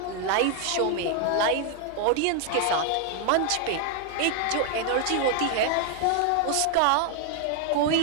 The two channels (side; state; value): both; different; correlation 0.01